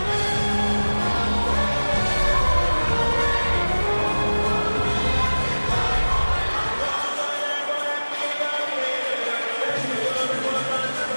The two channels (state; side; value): inverted; both; correlation -1.00